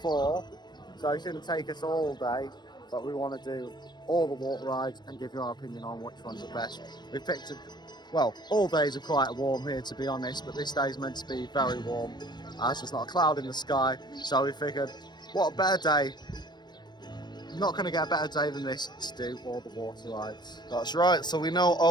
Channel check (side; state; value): right; late; 0.21 ms